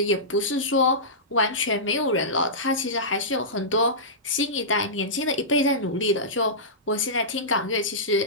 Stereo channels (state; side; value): normal; both; correlation -0.17